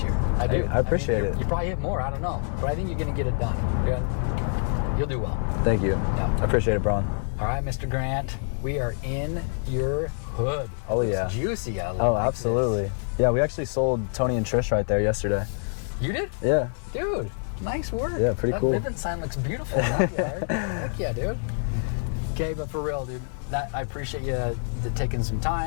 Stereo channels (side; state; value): right; silent; 61 dB below the other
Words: year. I do. I appreciate it. You probably hit more, I don't know, but I think you're gonna get it done. You'll do well. Thank you. Yeah. I appreciate it, Braun. All right, Mr. Grant, we are in your hood. Oh, it looks yeah. Juicy. I like absolutely. This. Yeah, we actually sold Tony and Trish right there yesterday. You did? Yeah. Dude, nice work. Yeah, pretty cool. That Vivint sign looks beautiful in that yard. Heck yeah, dude. Okay, but for real, dude, I appreciate you taking some